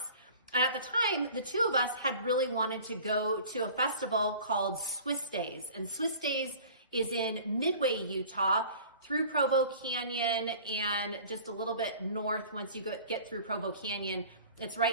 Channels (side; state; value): both; inverted; correlation -0.45